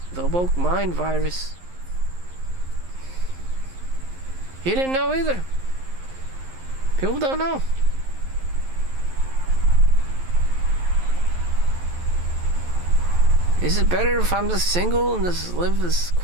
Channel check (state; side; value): late; left; 11 ms